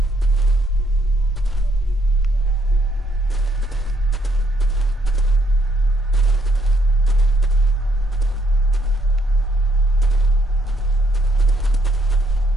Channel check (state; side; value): normal; both; correlation 0.71